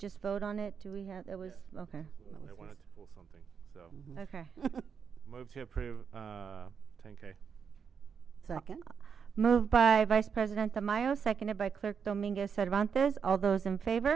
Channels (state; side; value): quieter; left; 6.6 dB